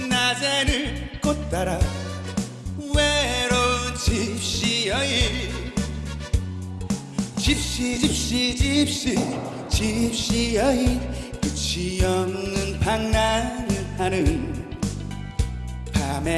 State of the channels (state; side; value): identical; both; correlation 1.00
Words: 꽃 따라 외로운 집시 여인. 집시 여인 끝이 없는 방랑을 하는.